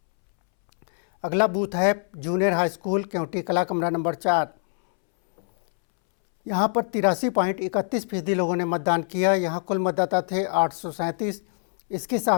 अगला बूथ है जूनियर हाई स्कूल केवटी कला कमरा नंबर 4। यहाँ पर 83.31% लोगों ने मतदान किया। यहाँ कुल मतदाता थे 837, इसके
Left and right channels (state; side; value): silent; right; 62 dB below the other